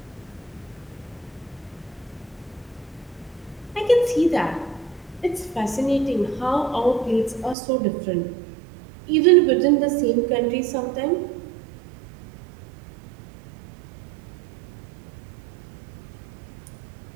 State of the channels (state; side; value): drops out; left; at 7.6 s